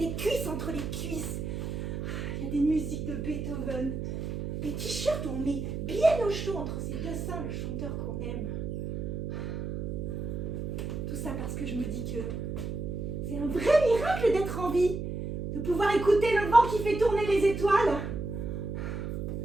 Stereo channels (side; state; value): right; noise; hum, 4 dB below the sound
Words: cuisses entre les cuisses, il y a des musiques de Beethoven, des t-shirts où on met bien au chaud entre ses deux seins le chanteur qu'on aime. Tout ça parce que je me dis que c'est un vrai miracle d'être en vie, de pouvoir écouter le vent qui fait tourner les étoiles.